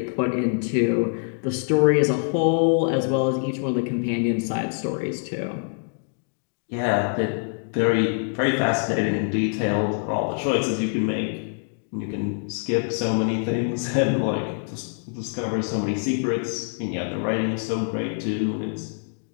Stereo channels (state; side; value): silent; right; 62 dB below the other